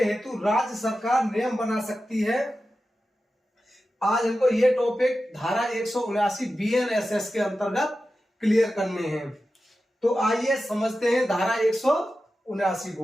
हेतु राज्य सरकार नियम बना सकती है। आज हमको ये टॉपिक धारा 179 BNSS के अंतर्गत क्लियर करने हैं। तो आइए समझते हैं धारा 179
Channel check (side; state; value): both; normal; correlation 0.92